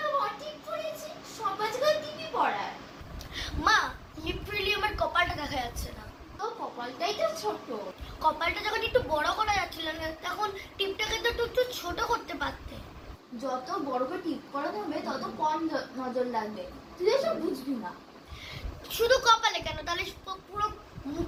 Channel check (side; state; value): both; identical; correlation 1.00